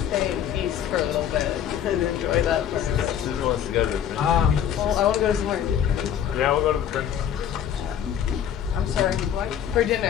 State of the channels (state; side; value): quieter; right; 9.5 dB